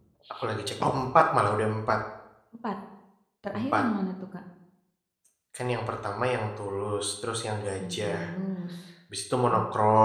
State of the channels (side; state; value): both; identical; correlation 1.00